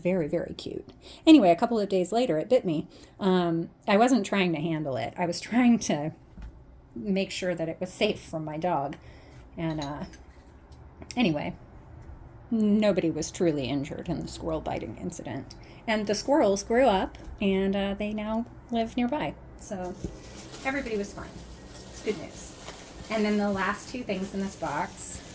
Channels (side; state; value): both; identical; correlation 1.00